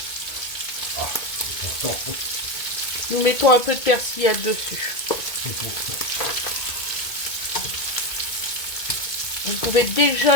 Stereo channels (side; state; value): right; late; 2.2 ms